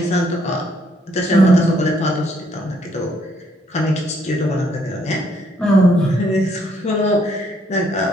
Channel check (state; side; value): normal; both; correlation 0.69